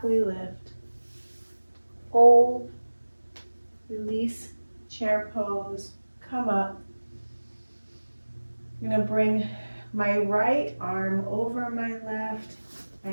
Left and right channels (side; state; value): both; inverted; correlation -1.00